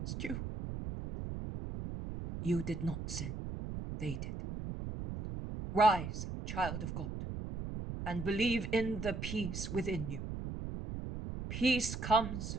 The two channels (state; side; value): noise; right; rumble, 6 dB below the sound